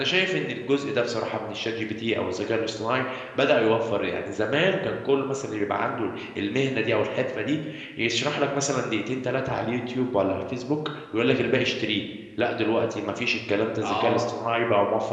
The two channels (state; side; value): identical; both; correlation 1.00